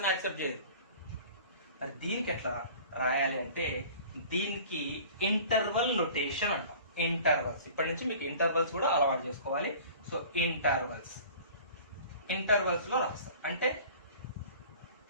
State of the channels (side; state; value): both; inverted; correlation -0.44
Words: యాక్సెప్ట్ చేయదు. మరి దీనికి ఎట్లా రాయాలి అంటే దీనికి ఇంటర్వల్ నోటేషన్ అంటాం. ఇంటర్వల్స్, ఇప్పటి నుంచి మీకు ఇంటర్వల్స్ కూడా అలవాటు చేసుకోవాలి. సో ఇంటర్వల్స్ లో రాస్తాం. అంటే